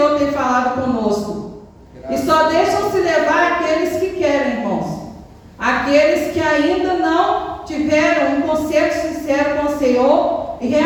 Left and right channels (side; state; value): both; identical; correlation 1.00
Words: tem falado conosco. E só deixam se levar aqueles que querem, irmãos. Aqueles que ainda não tiveram um conceito sincero com o Senhor e